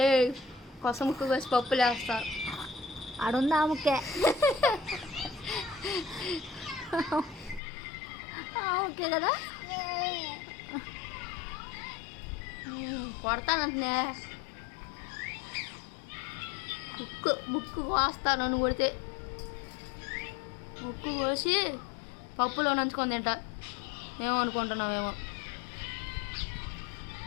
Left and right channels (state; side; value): drops out; right; at 7.6 s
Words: కొస ముక్కు వేసి పప్పులు వేస్తారు ఆడుందా ఆ ముక్కే ఓకే కదా కొడతానంటున్నా ముక్కు కోస్తా నన్ను కొడితే ముక్కు కోసి పప్పులో నంచుకొని తింటా ఏమో అనుకుంటున్నావేమో